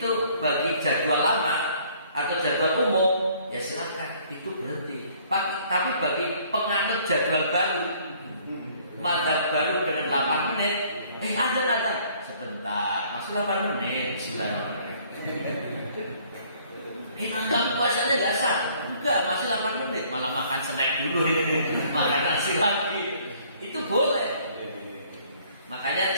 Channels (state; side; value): inverted; both; correlation -0.59